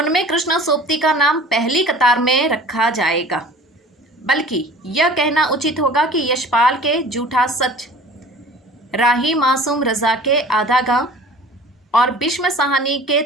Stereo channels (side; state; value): both; normal; correlation 0.44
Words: कृष्णा सोबती का नाम पहली कतार में रखा जाएगा, बल्कि यह कहना उचित होगा कि यशपाल के झूठा सच, राही मासूम रजा के आधा गांव और भीष्म साहनी